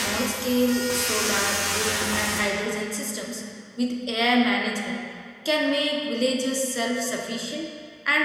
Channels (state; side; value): identical; both; correlation 1.00